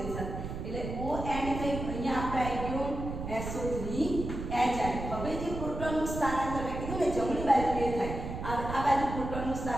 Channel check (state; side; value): noise; right; rumble, 6 dB below the sound